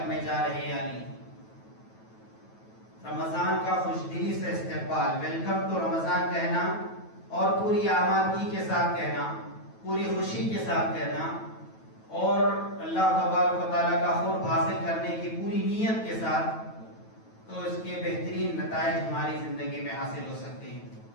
جا رہے ہیں. یعنی رمضان کا خوش دلی سے استقبال، ویلکم ٹو رمضان کہنا، اور پوری آمادگی کے ساتھ کہنا، پوری خوشی کے ساتھ کہنا، اور اللہ تبارک و تعالیٰ کا قرب حاصل کرنے کی پوری نیت کے ساتھ، تو اس کے بہترین نتائج ہماری زندگی میں حاصل ہو سکتے ہیں.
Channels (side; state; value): right; late; 9.2 ms